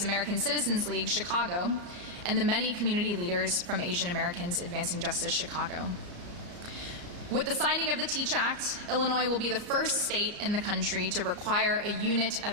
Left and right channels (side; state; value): left; late; 34 ms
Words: American Citizens League, Chicago, and the many community leaders from Asian Americans Advancing Justice, Chicago. With the signing of the TEACH Act, Illinois will be the first state in the country to require a unit of